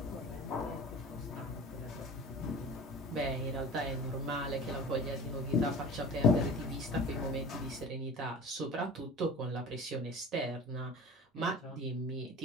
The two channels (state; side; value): normal; both; correlation 0.38